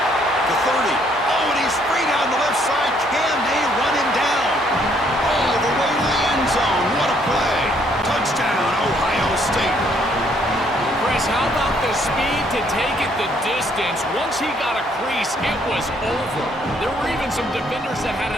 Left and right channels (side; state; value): both; normal; correlation 0.67